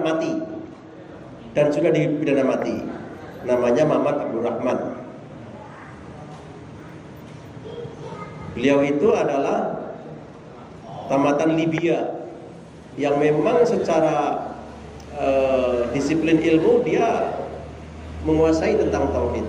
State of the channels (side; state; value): both; identical; correlation 1.00